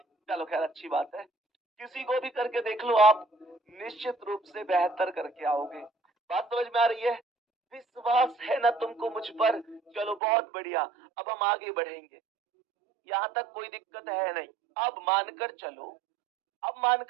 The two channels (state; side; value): drops out; left; at 10.2 s